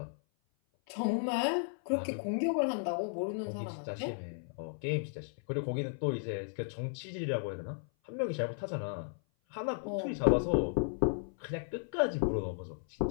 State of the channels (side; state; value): right; silent; 55 dB below the other